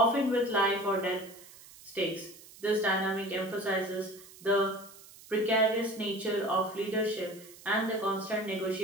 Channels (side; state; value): right; noise; hiss, 20 dB below the sound